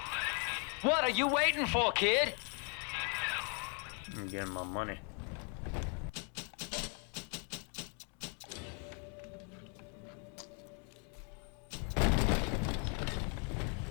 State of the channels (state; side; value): quieter; right; 38.3 dB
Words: What are you waiting for, kid? I'm getting my money.